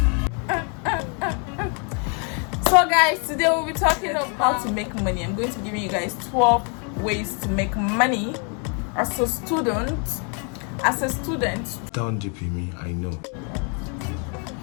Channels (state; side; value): quieter; right; 38.2 dB